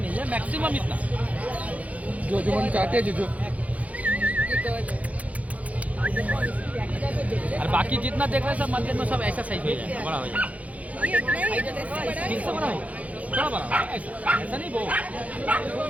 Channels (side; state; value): left; late; 0.069 ms